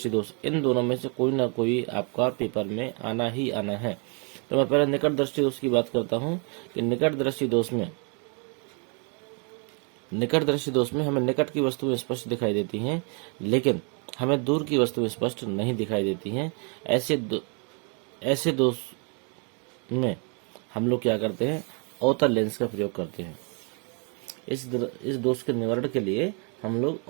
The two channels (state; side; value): quieter; left; 36.9 dB